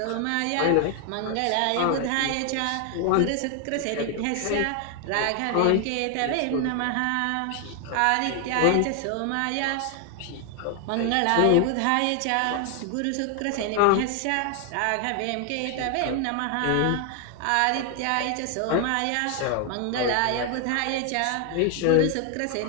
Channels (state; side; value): different; both; correlation 0.00